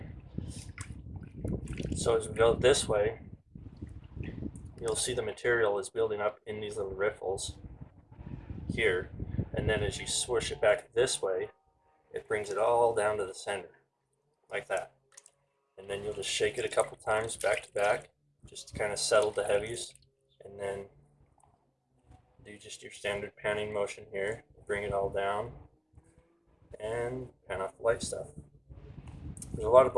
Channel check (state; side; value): identical; both; correlation 1.00